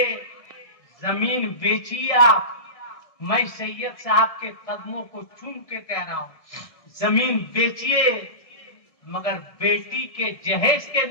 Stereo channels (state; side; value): late; right; 1.7 ms